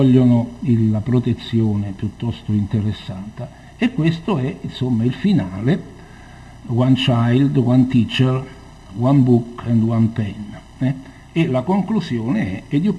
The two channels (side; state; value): both; identical; correlation 1.00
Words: la protezione piuttosto interessata. E questo è insomma il finale: one child, one teacher, one book and one pen. e la conclusione è